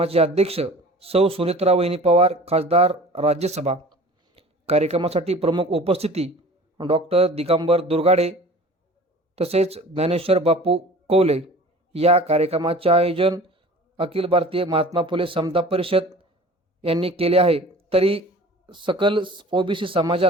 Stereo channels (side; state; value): both; normal; correlation 0.43